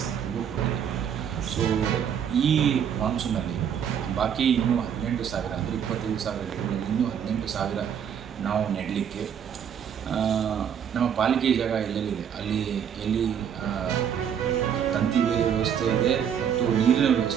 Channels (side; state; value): left; quieter; 8.3 dB